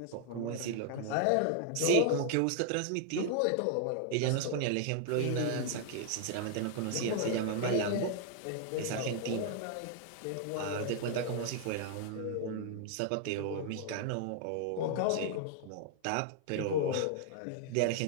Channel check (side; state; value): both; different; correlation 0.00